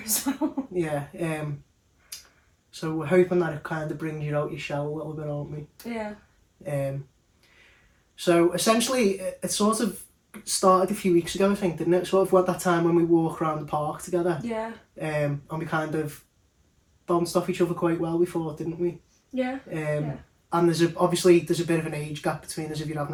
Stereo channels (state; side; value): identical; both; correlation 1.00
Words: as well. Yeah. So we're hoping that it kind of brings you out your shell a little bit, aren't we? Yeah. So essentially, it sort of started a few weeks ago, I think, didn't it? Sort of went that time when we walk around the park together. Yeah. And we kind of bounced off each other quite well before, didn't we? Yeah. And there's a bit of an age gap between us if you